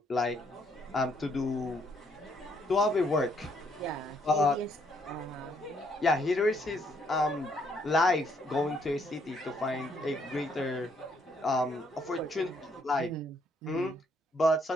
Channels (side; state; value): both; normal; correlation 0.70